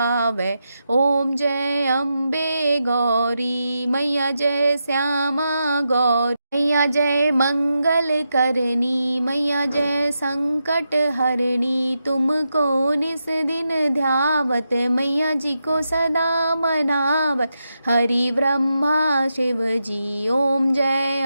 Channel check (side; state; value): both; inverted; correlation -0.86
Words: ओम जय अम्बे गौरी। मैया जय श्यामा गौरी। मैया जय मंगल करनी, मैया जय संकट हरणी। तुमको निस दिन ध्यावत, मैया जी को सदा मनावत, हरि ब्रह्मा शिव जी। ओम जय